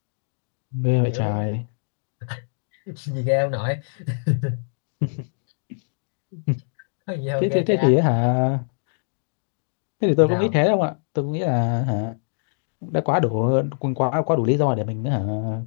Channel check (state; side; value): silent; right; digital silence